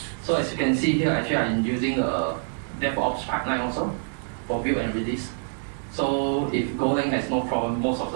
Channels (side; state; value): left; silent; digital silence